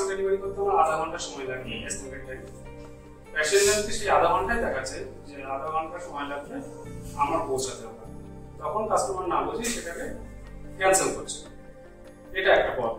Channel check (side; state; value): both; identical; correlation 1.00